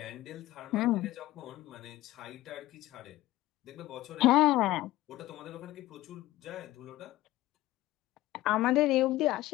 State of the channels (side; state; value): right; quieter; 16.6 dB